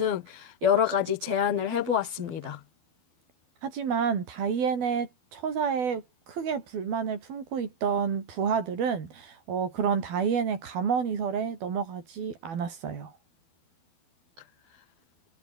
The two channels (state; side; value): late; left; 12 ms